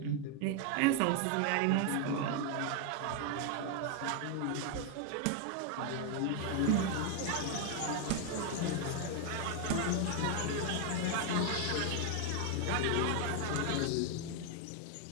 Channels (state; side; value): different; both; correlation 0.01